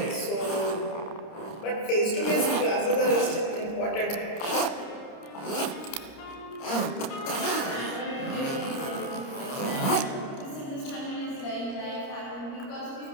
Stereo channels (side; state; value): right; late; 30 ms